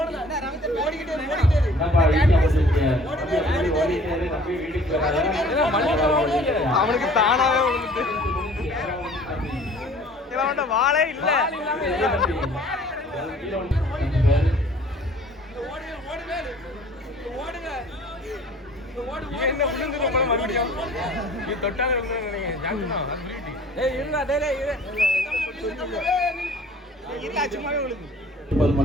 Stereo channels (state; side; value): normal; both; correlation 0.51